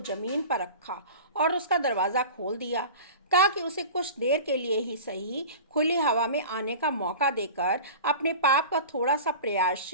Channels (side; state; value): both; inverted; correlation -0.36